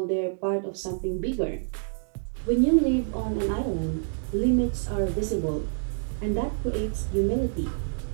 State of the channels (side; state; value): left; silent; digital silence